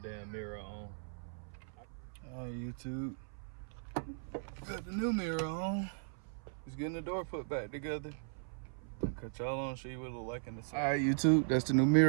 mirror on. All right, YouTube, got the new mirror on. Just getting the door put back together. I'll cut y'all on, show you what it look like in the side. All right, YouTube, that's the new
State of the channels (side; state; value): left; silent; 52 dB below the other